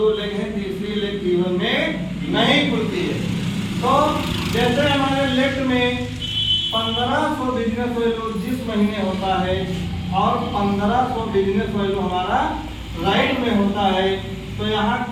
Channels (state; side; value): identical; both; correlation 1.00